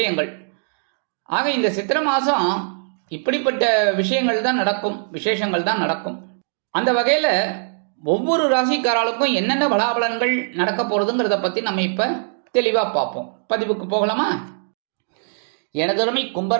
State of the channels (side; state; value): left; silent; digital silence